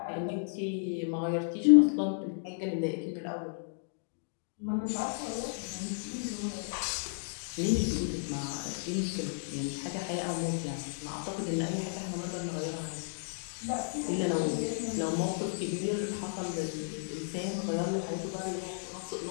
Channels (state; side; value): silent; right; digital silence